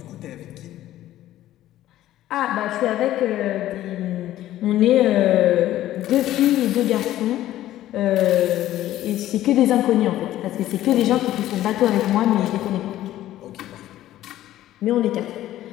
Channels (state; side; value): quieter; right; 13.8 dB